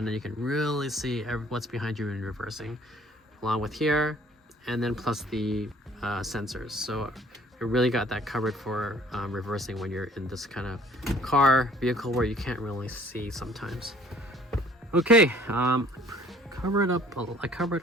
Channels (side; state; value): both; normal; correlation 0.56